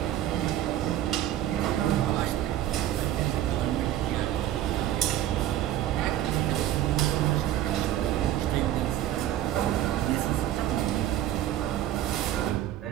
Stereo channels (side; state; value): left; quieter; 12.7 dB